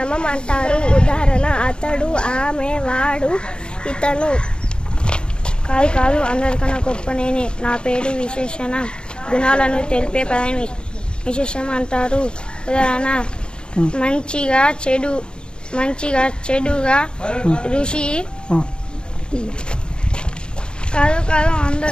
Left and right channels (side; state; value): right; late; 0.051 ms